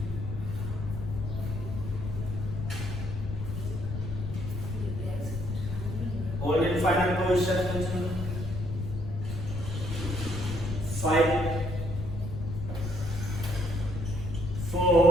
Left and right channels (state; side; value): noise; left; rumble, 6 dB below the sound